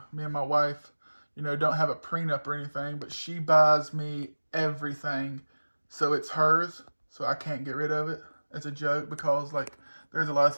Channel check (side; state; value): both; inverted; correlation -1.00